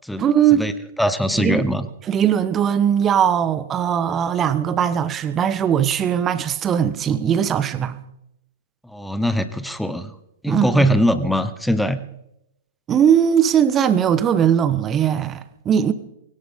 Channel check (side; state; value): left; quieter; 5.9 dB